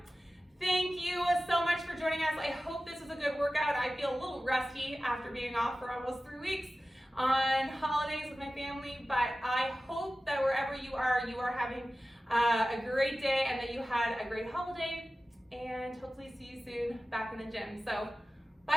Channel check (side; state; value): both; normal; correlation 0.95